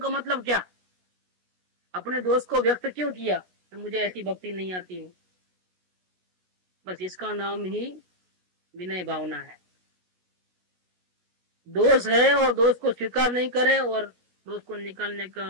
का मतलब क्या? अपने दोस्त को व्यक्त क्यों किया कि मुझे ऐसी भक्ति नहीं आती है? बस इसका नाम ही विनय भावना है। दोष है और दोष को स्वीकार नहीं करे और दोष को निकालने का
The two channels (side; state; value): left; late; 16 ms